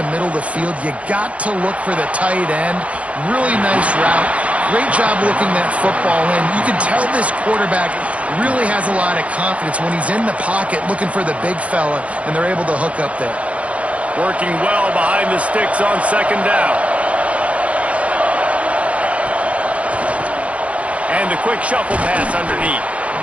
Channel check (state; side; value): late; left; 0.064 ms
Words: middle of the field, you got to look for the tight end. Really nice route. Great job looking that football in. You can tell this quarterback really has a lot of confidence when he's in the pocket looking for the big fella, and they're able to hook up there. Working well behind the sticks on 2nd down. And the quick shuffle pass underneath.